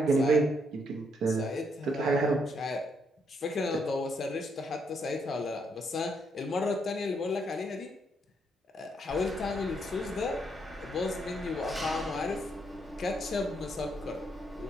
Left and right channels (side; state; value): both; normal; correlation 0.75